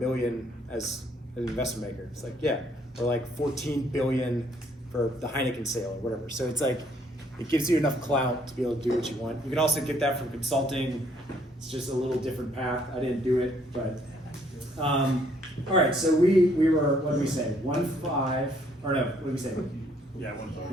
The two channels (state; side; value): normal; both; correlation 0.66